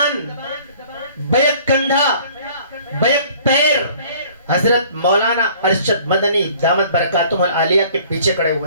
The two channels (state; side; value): inverted; both; correlation -0.53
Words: بیک کندھا، بیک پیر حضرت مولانا ارشد مدنی دامت برکاتہم العالیہ کے پیچھے کھڑے